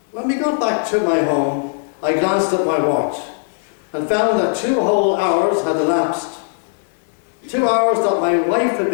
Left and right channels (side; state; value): right; silent; 67 dB below the other